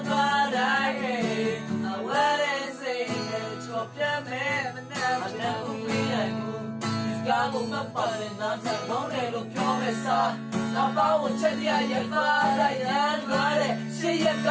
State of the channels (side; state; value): both; identical; correlation 1.00